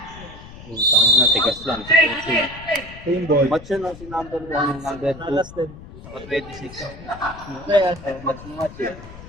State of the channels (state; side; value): noise; left; rumble, 16 dB below the sound